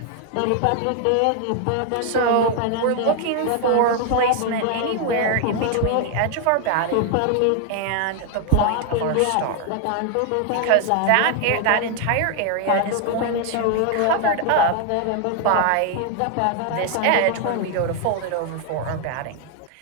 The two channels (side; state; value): both; different; correlation 0.00